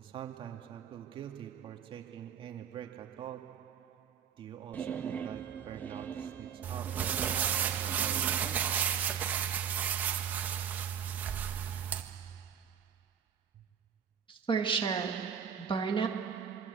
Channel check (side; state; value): left; quieter; 7.8 dB